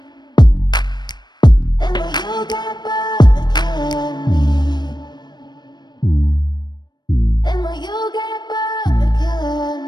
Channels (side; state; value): right; late; 0.21 ms